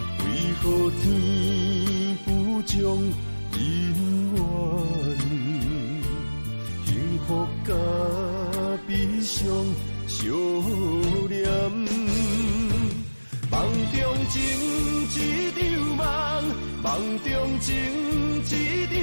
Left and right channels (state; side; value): inverted; both; correlation -1.00